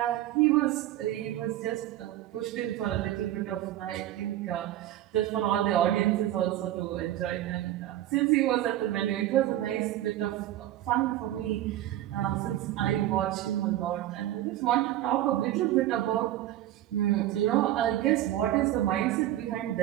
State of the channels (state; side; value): quieter; left; 13.6 dB